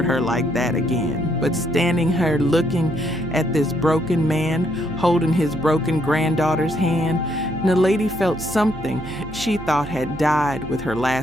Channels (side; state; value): right; noise; hum, 14 dB below the sound